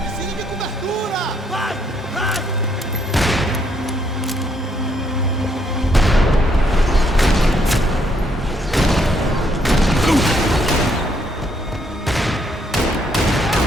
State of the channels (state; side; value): normal; both; correlation 0.72